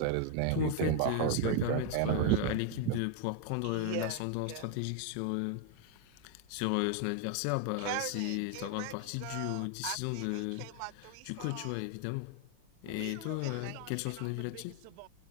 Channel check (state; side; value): different; both; correlation 0.01